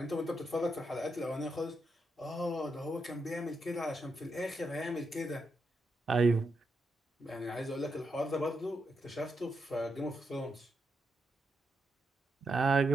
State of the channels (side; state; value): both; normal; correlation 0.83